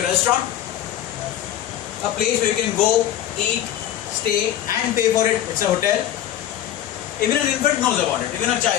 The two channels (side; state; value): right; quieter; 11.8 dB